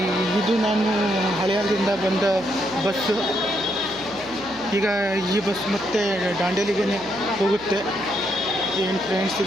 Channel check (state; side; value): noise; right; hum, 21 dB below the sound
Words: ಇದು ನಾನು ಹಳೆಯದಿಂದ ಬಂದ ಬಸ್ಸು. ಈಗ ಈ ಬಸ್ ಮತ್ತೆ ದಾಂಡೇಲಿಗೆ ಹೋಗುತ್ತೆ. ಏನು ಫ್ರೆಂಡ್ಸ್,